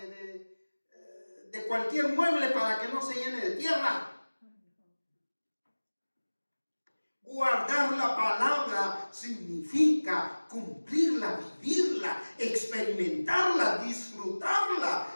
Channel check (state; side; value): inverted; both; correlation -1.00